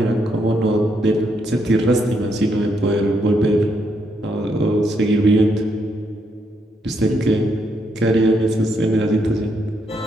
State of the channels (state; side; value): normal; both; correlation 0.77